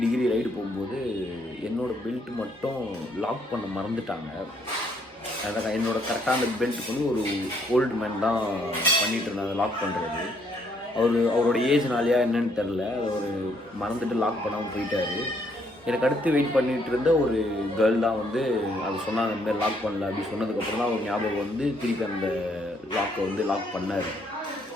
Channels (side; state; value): both; normal; correlation 0.69